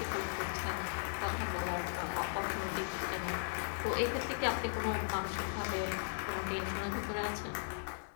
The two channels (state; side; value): silent; right; digital silence